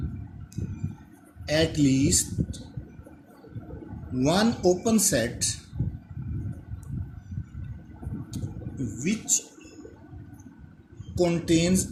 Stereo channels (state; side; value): identical; both; correlation 1.00